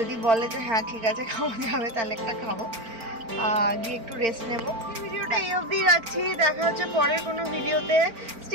বলে যে হ্যাঁ ঠিক আছে খাওয়া যাবে, তাহলে একটা খাবো, গিয়ে একটু রেস্ট নেবো। ভিডিওটা এই অবধি রাখছি, দেখা হচ্ছে পরের কোনো ভিডিওতে।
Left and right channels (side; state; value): left; late; 4.4 ms